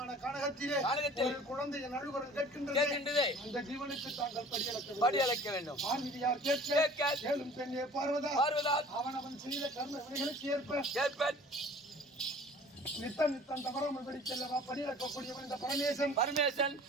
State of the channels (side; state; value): both; normal; correlation 0.47